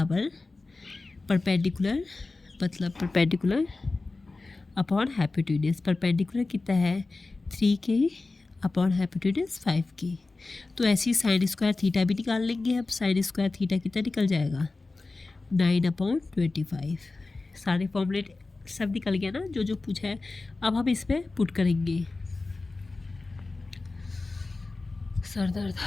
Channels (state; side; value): quieter; right; 3.5 dB